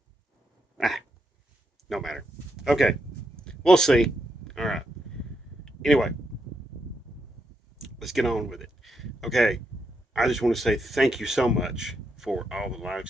Ah, no matter. Okay. We'll see. All right. Anyway, let's get on with it. Okay. I just want to say thank you so much for all the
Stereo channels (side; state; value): both; normal; correlation 0.81